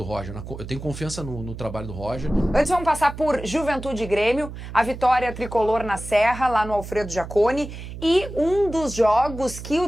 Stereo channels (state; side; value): noise; right; hum, 11 dB below the sound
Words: Roger, eu tenho confiança no trabalho do Roger. Antes vamos passar por Juventude e Grêmio, a vitória tricolor na Serra, lá no Alfredo Jaconi, e um dos jogos que